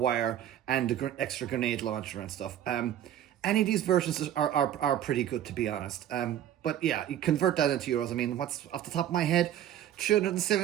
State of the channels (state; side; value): quieter; left; 11.2 dB